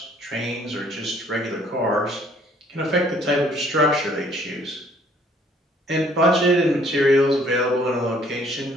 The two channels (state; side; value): normal; both; correlation 0.61